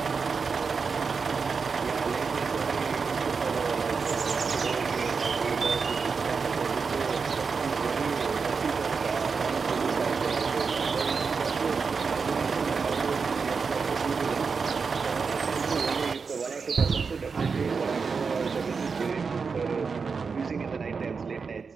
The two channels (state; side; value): quieter; left; 5.2 dB